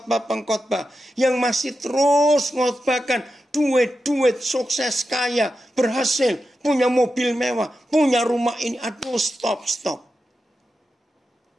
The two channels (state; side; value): normal; both; correlation 0.90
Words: Yang masih terus mengkhotbahkan. Duit, sukses, kaya, berhasil, punya mobil mewah, punya rumah ini. Aduh, stop.